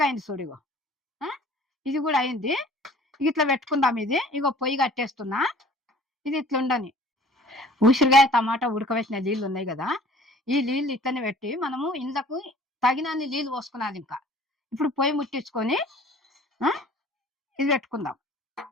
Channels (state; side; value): normal; both; correlation 0.50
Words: అయింది చూడు. ఇగో ఇది కూడా అయింది. ఇట్లా పెట్టుకుందాం. ఇది ఇగో పొయ్యి కట్టేస్తున్నా. ఇది ఇట్లా ఉండని. ఉసిరికాయ టమాటా ఉడకబెట్టిన నీళ్ళు ఉన్నాయి కదా, ఈ నీళ్ళు ఇట్లనే పెట్టి మనము ఇండ్లకు తగినన్ని నీళ్ళు పోసుకున్నది. ఇంకా ఇప్పుడు పొయ్యి ముట్టించుకొని ఇది పెట్టుకుందాం.